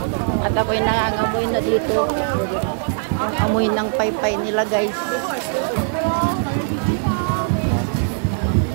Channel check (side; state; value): left; silent; digital silence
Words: At ako'y nangangamoy na dito. Yung amoy ng paypay nila guys.